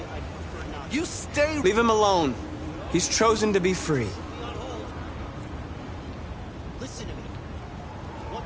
You stay... Leave him alone. He's chosen to be free. Listen to me. What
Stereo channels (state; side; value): identical; both; correlation 1.00